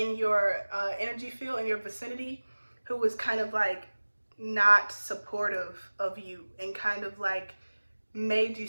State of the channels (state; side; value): inverted; both; correlation -1.00